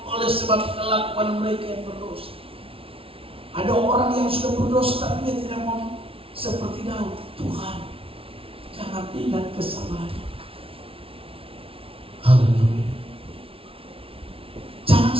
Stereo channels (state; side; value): late; left; 0.26 ms